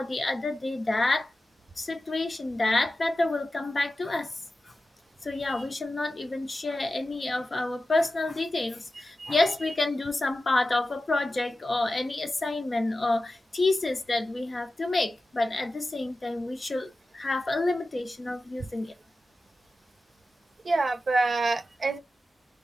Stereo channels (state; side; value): normal; both; correlation 0.93